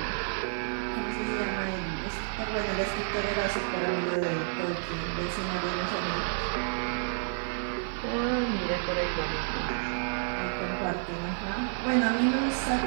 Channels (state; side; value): silent; left; digital silence